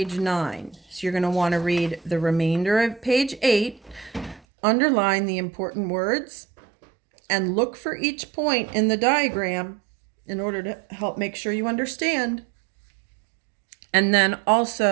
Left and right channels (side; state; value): left; drops out; at 4.4 s